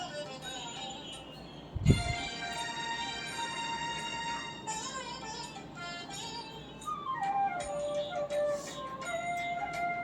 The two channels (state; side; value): identical; both; correlation 1.00